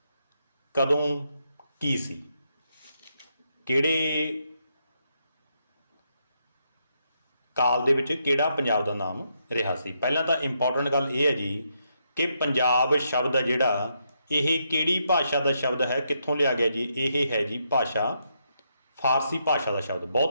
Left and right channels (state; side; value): inverted; both; correlation -0.79